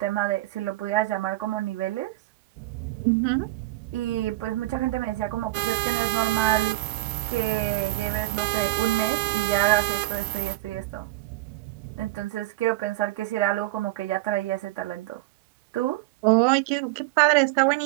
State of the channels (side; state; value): left; quieter; 18.0 dB